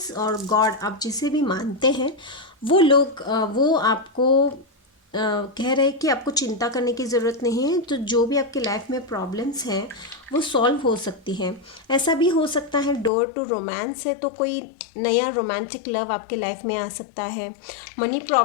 और गॉड आप जिसे भी मानते हैं वो लोग वो आपको कह रहे हैं कि आपको चिंता करने की ज़रूरत नहीं है, तो जो भी आपके लाइफ में प्रॉब्लम्स हैं वो सॉल्व हो सकती हैं। ऐसा भी हो सकता है डोर टू रोमांस है, तो कोई नया रोमांटिक लव आपके लाइफ में आ सकता है। मनी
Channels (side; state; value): right; drops out; at 13.1 s